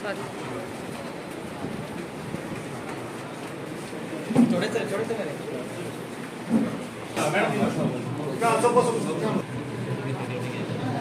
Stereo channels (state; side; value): identical; both; correlation 1.00